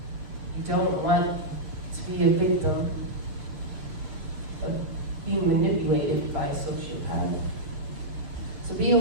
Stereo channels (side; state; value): left; late; 7.2 ms